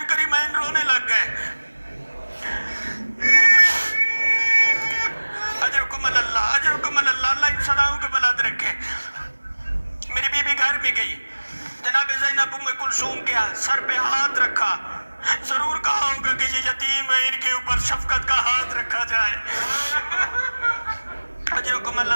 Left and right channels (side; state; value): both; inverted; correlation -1.00